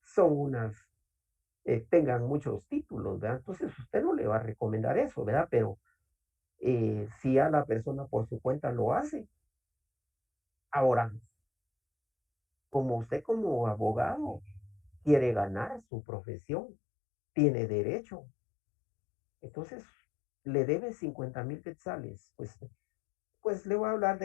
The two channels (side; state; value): right; drops out; at 15.8 s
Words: son tengan muchos títulos, ¿verdad? Entonces usted no le va a recomendar eso, ¿verdad? Pero si a la persona por su cuenta lo hace. Ahora, como usted como abogado quiere ganar su profesión, tiene derecho. Entonces, le debe 50,000 quetzales. Pues le voy a hablar